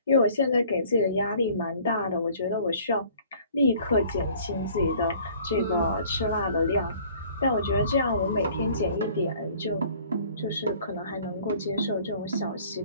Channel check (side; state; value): both; inverted; correlation -0.53